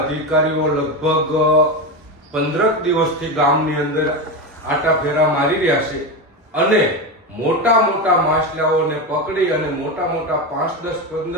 અધિકારીઓ લગભગ 15 દિવસથી ગામની અંદર આટા ફેરા મારી રહ્યા છે અને મોટા મોટા માછલાઓને પકડી અને મોટા 5, 10,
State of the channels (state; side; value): normal; both; correlation 0.17